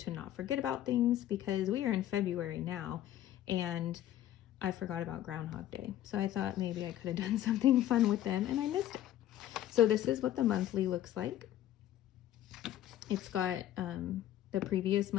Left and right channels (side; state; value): right; quieter; 12.5 dB